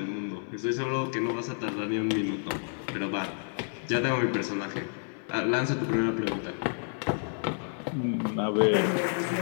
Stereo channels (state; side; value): silent; right; digital silence